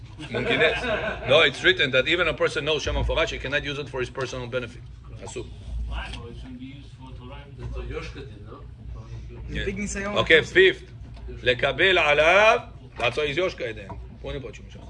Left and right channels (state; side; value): identical; both; correlation 1.00